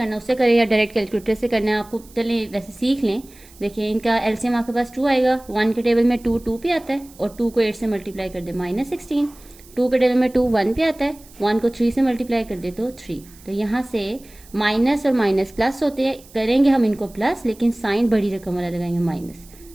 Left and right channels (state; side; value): noise; right; hiss, 24 dB below the sound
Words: उससे करें, या डायरेक्ट कैलकुलेटर से करना है आपको, चलें वैसे सीख लें। देखिए, इनका एलसीएम आपके पास 2 आएगा। 1 के टेबल में 2 पे आता है, और 2 को 8 से मल्टीप्लाई कर दे -16। 2 के टेबल में 2 1 पे आता है, 1 को 3 से मल्टीप्लाई कर दे तो 3। तो यहाँ से माइनस और माइनस प्लस होते हैं, करेंगे हम इनको प्लस, लेकिन साइन बड़ी रकम वाला लगाएंगे माइनस।